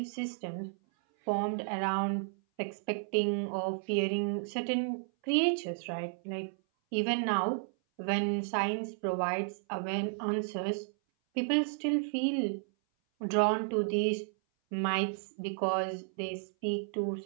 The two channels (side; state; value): left; silent; 56 dB below the other